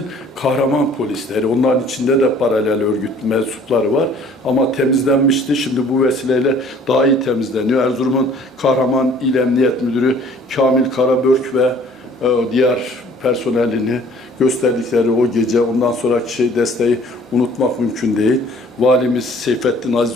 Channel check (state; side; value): normal; both; correlation 0.54